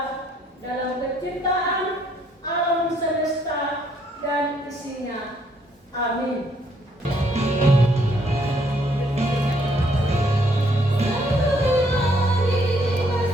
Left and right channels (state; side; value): normal; both; correlation 0.68